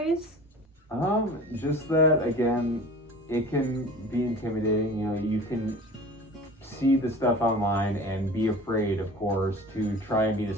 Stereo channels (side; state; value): both; normal; correlation 0.40